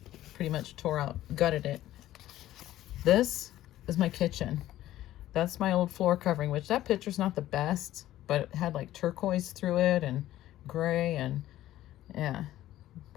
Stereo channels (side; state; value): right; quieter; 14.0 dB